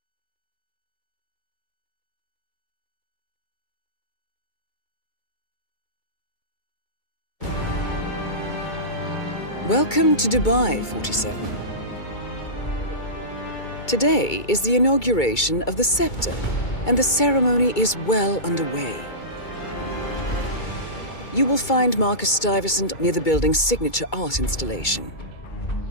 Welcome to Dubai, 47. Today is the inauguration of the Scepter, and the ceremony is well underway. You will find Marcus Stuyvesant near the building's signature art installation,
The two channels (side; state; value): right; late; 2.3 ms